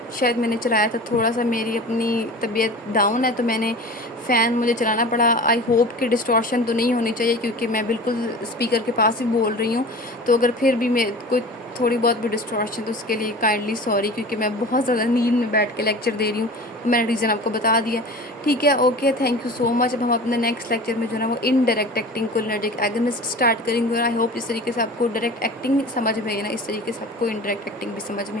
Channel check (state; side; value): normal; both; correlation 0.37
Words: शायद मैंने चलाया था, थोड़ा सा मेरी अपनी तबीयत डाउन है तो मैंने फ़ैन मुझे चलाना पड़ा। आई होप कि डिस्टॉर्शन तो नहीं होनी चाहिए, क्योंकि मैं बिल्कुल स्पीकर के पास ही बोल रही हूँ। तो अगर फिर भी मैं कोई थोड़ी बहुत भी डिस्टॉर्शन, तो उसके लिए काइंडली सॉरी, क्योंकि मैं बहुत ज़्यादा नींद में बैठ के लेक्चर दे रही हूँ। मैंने रीज़न आपको बता दिया। ठीक है, okay, thank you so much. अब हम अपने नेक्स्ट लेक्चर में जो है ना वो indirect acting cholinergic agonist start करेंगे, और आई होप इस तरीके से आपको डायरेक्ट एक्टिंग समझ में आई ना, इस तरीके से आपको इनडायरेक्ट एक्टिंग भी समझ